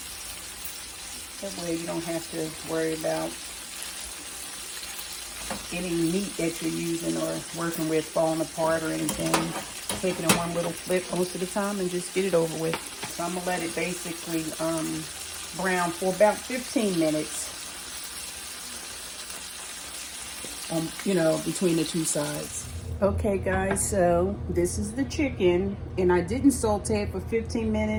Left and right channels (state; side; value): identical; both; correlation 1.00